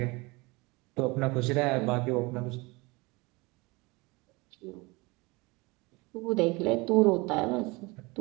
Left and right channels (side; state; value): left; quieter; 25.0 dB